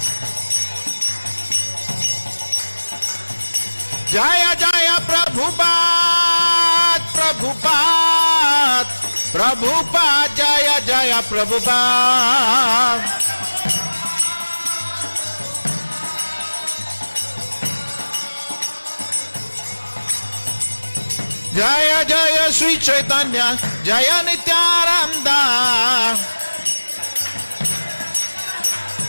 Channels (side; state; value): both; inverted; correlation -1.00